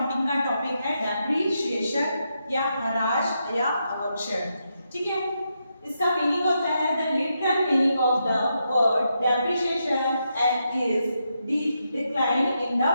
का टॉपिक है डेप्रीशिएशन या ह्रास या अवक्षय। ठीक है, इसका मीनिंग होता है the literal meaning of the word depreciation is decline in the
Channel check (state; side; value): inverted; both; correlation -0.83